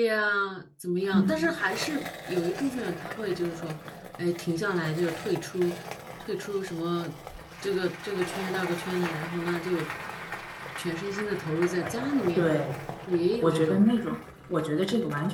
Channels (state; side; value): identical; both; correlation 1.00